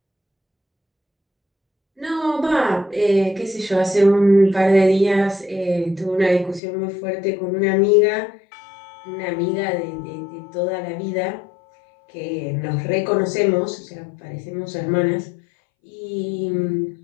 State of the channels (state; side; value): drops out; right; at 6.6 s